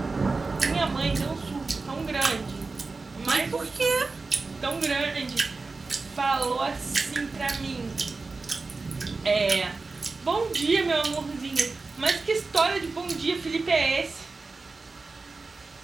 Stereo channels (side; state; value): left; quieter; 3.9 dB